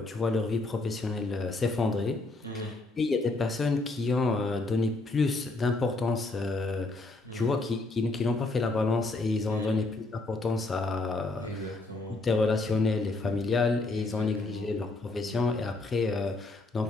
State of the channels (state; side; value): quieter; right; 3.2 dB